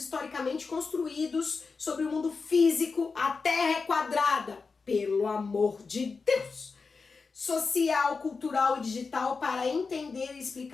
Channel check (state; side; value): quieter; right; 4.6 dB